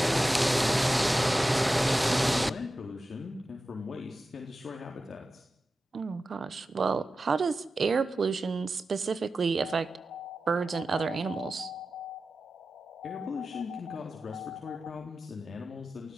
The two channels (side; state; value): both; normal; correlation 0.93